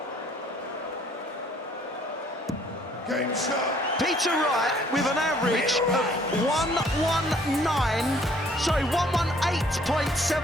Game shot. Peter Wright with an average of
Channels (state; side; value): normal; both; correlation 0.60